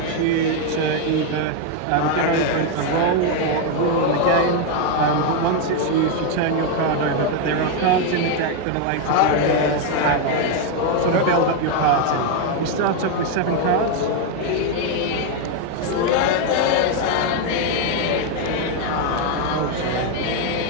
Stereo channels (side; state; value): both; different; correlation 0.01